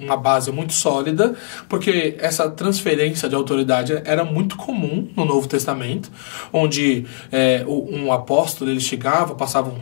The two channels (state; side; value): silent; right; digital silence